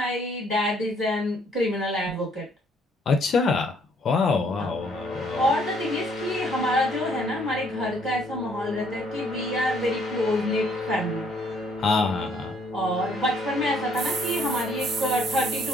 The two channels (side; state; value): both; normal; correlation 0.65